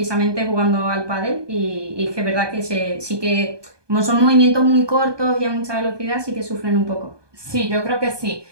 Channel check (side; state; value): left; late; 1.2 ms